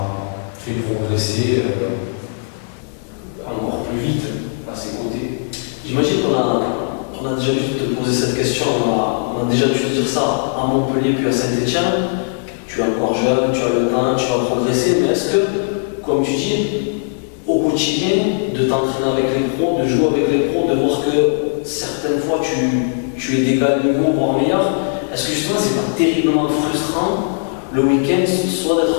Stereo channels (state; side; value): silent; right; digital silence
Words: fait progresser encore plus vite à ses côtés. J'imagine qu'on a déjà dû te poser cette question, on a déjà dû te dire ça à Montpellier puis à Saint-Etienne. Tu es encore jeune, tu as le temps, tu vas progresser, mais est-ce que, comme tu dis, au quotidien, de t'entraîner avec les pros, de jouer avec les pros, de voir que certaines fois tu es d'égal niveau, voire meilleur, est-ce que justement c'est pas terriblement frustrant le week-end, soit